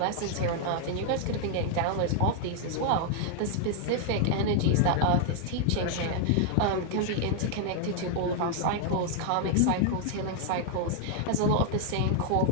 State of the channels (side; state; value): both; different; correlation 0.00